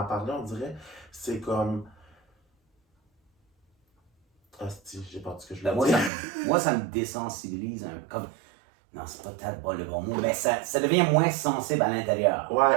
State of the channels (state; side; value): drops out; left; at 6.1 s